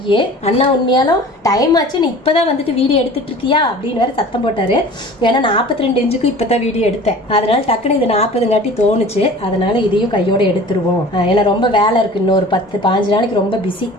அண்ணா உண்மையாலும் டைம் ஆச்சு, நீ இப்பதான் வந்துட்டு வீடியோ எடுத்துட்டு இருக்கியா அப்படின்னு வேற சத்தம் போட்டாரு. ஏன்னா 42 இன்ச்சுக்கு இப்பதான் வீடியோ எடுத்தேன், அதனால டக்குனு இது 40 தோணுச்சு, அதனால இதையும் கையோட எடுத்துருவோம். ஏன்னா ரொம்ப வேலை இருக்கு, இன்னொரு 10-15 நாளைக்கு ரொம்ப பிஸி,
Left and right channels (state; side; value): normal; both; correlation 0.43